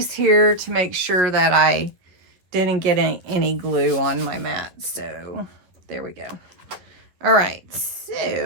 here to make sure that I didn't get any glue on my mat. So there we go. All right,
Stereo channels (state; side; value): late; left; 11 ms